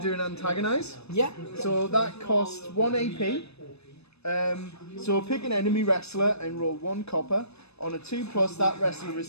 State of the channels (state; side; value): late; right; 0.79 ms